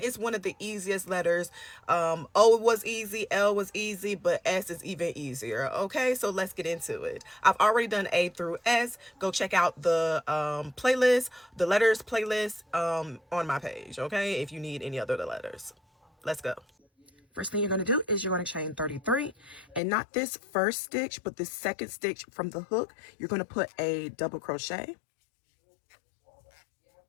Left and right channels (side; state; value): right; drops out; at 19.8 s